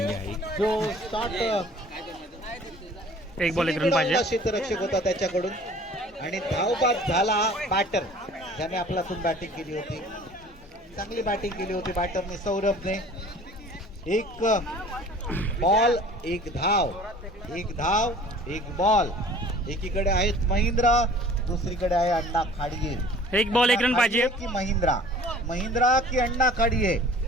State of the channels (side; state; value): both; normal; correlation 0.48